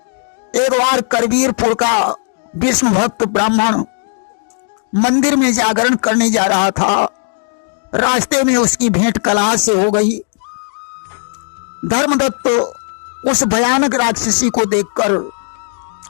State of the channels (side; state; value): right; silent; 58 dB below the other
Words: एक बार करवीरपुर का विष्णु भक्त ब्राह्मण मंदिर में जागरण करने जा रहा था। रास्ते में उसकी भेंट कलहा से हो गई। धर्मदत्त उस भयानक राक्षसी को देखकर